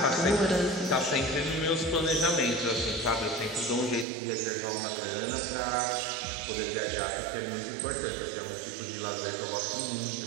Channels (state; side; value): drops out; left; at 4.0 s